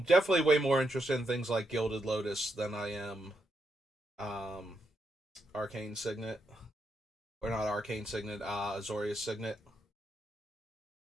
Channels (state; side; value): normal; both; correlation 0.82